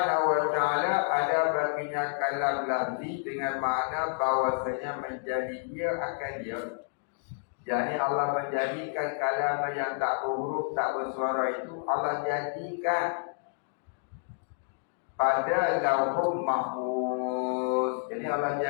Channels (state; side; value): silent; right; digital silence